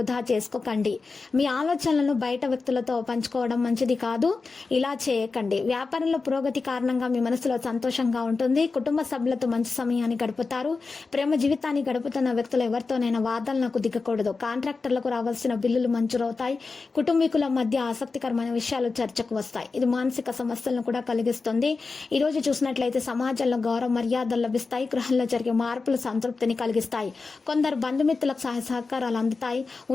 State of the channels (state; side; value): quieter; right; 4.2 dB